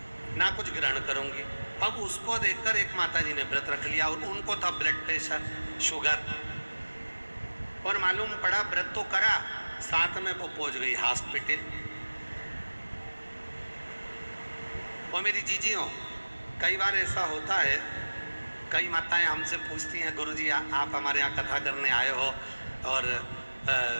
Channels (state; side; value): inverted; both; correlation -1.00